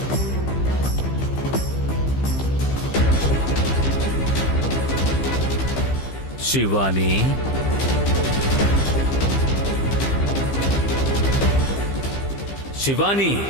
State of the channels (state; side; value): late; right; 15 ms